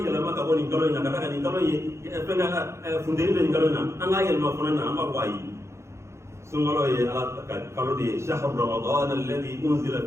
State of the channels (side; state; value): left; late; 0.13 ms